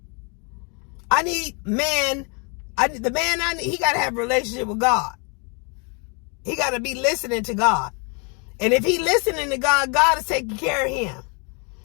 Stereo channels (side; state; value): right; quieter; 34.7 dB